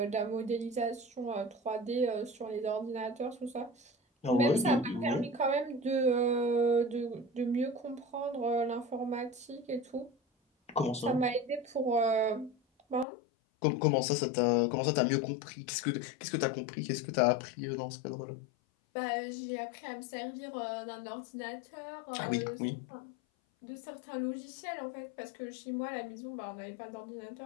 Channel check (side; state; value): right; drops out; at 13.1 s